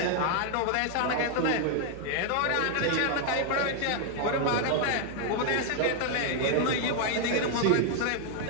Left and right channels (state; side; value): different; both; correlation 0.00